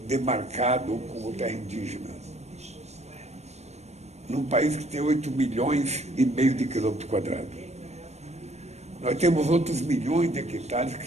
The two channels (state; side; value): late; left; 0.32 ms